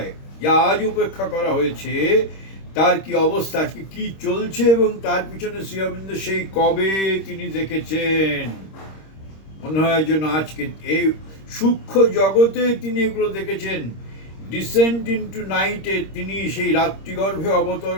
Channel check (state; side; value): late; right; 26 ms